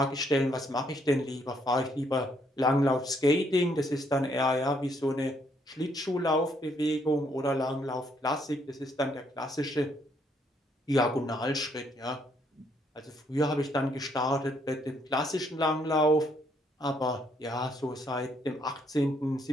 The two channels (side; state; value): both; normal; correlation 0.70